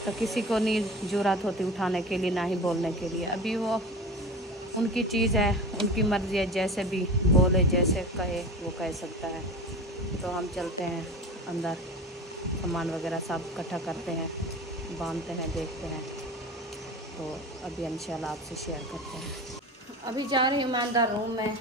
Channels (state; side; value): normal; both; correlation 0.33